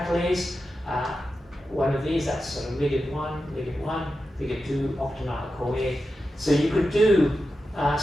One of these, that's sort of ligand 1, ligand 2, octonyl-CoA. So you could do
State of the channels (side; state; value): both; normal; correlation 0.91